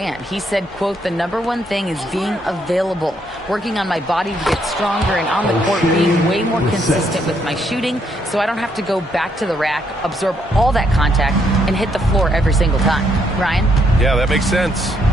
He said, quote, "The #1 thing is being available, working on my body to get stronger and on the court being way more consistent with my shooting so I don't have to go back to the rack, absorb all that contact, and hit the floor every single time." Ryan? Yeah, that makes sense.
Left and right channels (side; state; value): both; normal; correlation 0.73